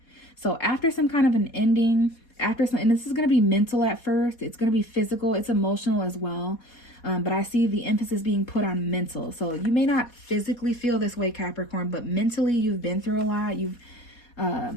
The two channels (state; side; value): late; right; 4.2 ms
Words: So after some kind of an ending, and this is going to be mental at first, it's going to be physical, it's emotional as well. But I see the emphasis being put on mental. So you may not physically feel this way, Capricorn, but mentally you've been through a lot.